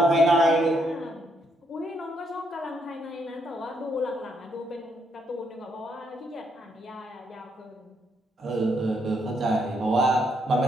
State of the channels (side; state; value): both; normal; correlation 0.75